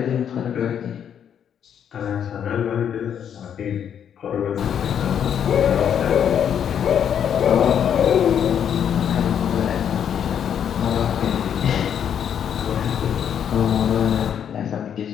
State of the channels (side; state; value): right; quieter; 8.7 dB